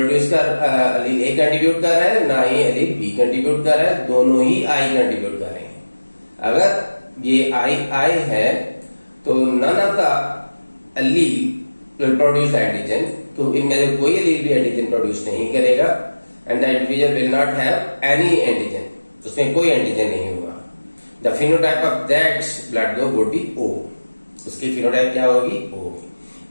कर अलील ए कंट्रीब्यूट कर रहा है, ना ही अलील बी कंट्रीब्यूट कर रहा है, दोनों ही आई कंट्रीब्यूट कर रहे हैं। अगर ये आई है तो none of the allele will produce antigen, तो इनमें से कोई अलील भी एंटीजन प्रोड्यूस नहीं करेगा, and the individual will not have any antigen, उसमें कोई एंटीजन नहीं होगा। The phenotype of that blood group would be O, उसकी फिनोटाइप क्या होगी, ओ।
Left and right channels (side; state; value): both; inverted; correlation -1.00